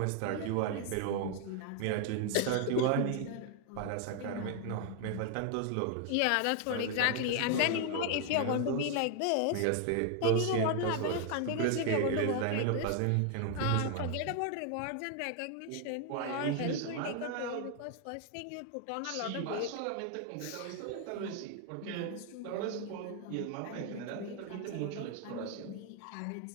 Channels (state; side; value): different; both; correlation 0.00